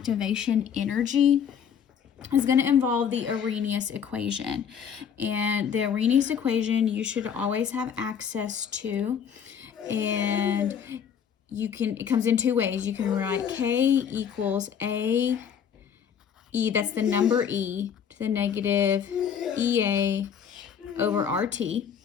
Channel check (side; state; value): right; quieter; 7.9 dB